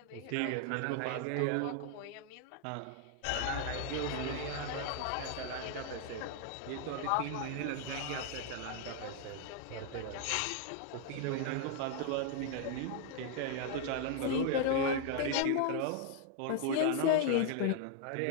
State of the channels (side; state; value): both; different; correlation 0.00